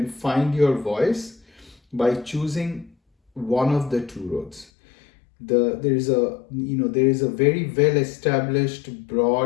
find your voice by choosing one of the two roads. There is a very well established,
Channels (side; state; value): right; drops out; at 4.7 s